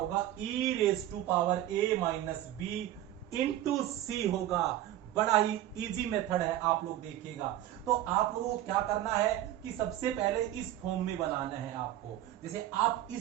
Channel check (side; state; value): left; quieter; 13.2 dB